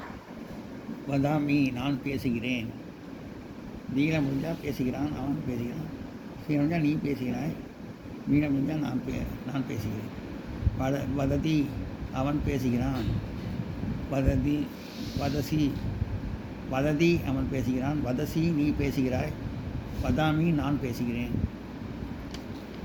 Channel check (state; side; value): identical; both; correlation 1.00